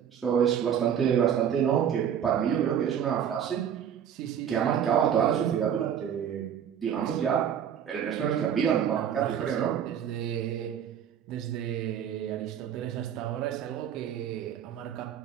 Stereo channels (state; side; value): quieter; left; 8.9 dB